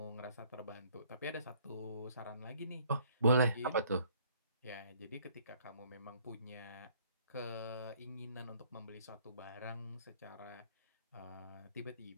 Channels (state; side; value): inverted; both; correlation -0.60